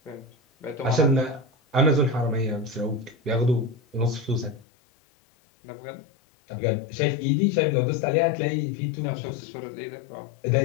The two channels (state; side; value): drops out; right; at 4.6 s